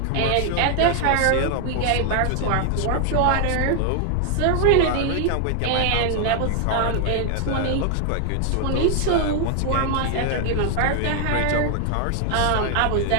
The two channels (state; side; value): different; both; correlation 0.00